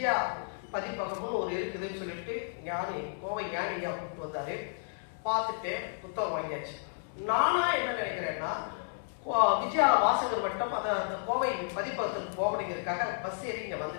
பதிப்பகம்னு ஒரு இருக்குதுன்னு சொல்லிட்டு கோவை ஞானியா கூப்பிட்டு வந்தாரு. பார்த்துட்டு புத்தகம் வாங்கியாச்சு. நானா என்ன நினைக்கிறேன்னா, விஜயா வாசகர் வட்டம் அந்த கோவை பதிப்பகத்துக்கு போகணுங்கிறதுக்காக பஸ் ஏறி இங்க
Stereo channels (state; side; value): silent; right; 56 dB below the other